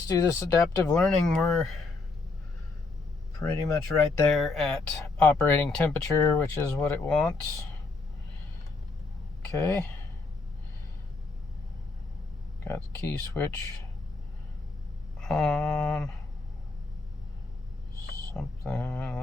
do this adaptive learning. We're pretty much right there at operating temperature, which is what it wants. Okay, got the key switch on. Something,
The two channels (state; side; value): quieter; right; 3.8 dB